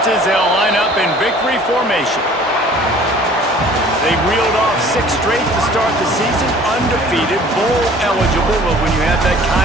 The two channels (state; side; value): normal; both; correlation 0.51